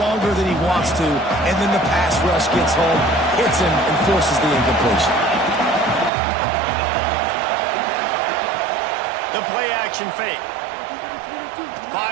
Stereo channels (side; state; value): left; drops out; at 6.1 s